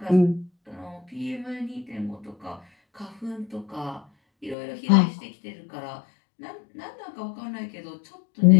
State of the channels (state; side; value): drops out; right; at 4.5 s